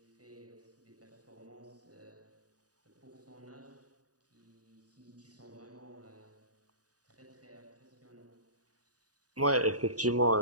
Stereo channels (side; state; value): left; late; 0.68 ms